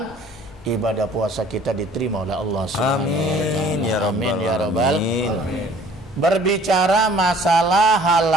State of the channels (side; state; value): both; normal; correlation 0.54